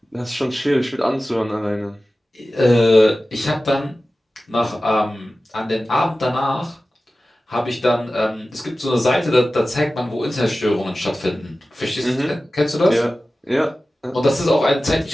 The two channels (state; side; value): normal; both; correlation 0.95